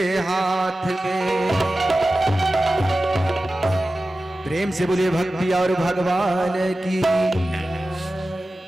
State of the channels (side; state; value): both; normal; correlation 0.95